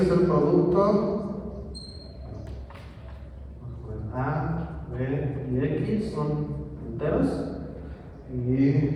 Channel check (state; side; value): identical; both; correlation 1.00